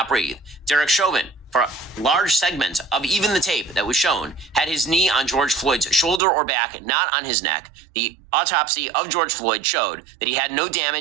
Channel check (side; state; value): left; drops out; at 6.2 s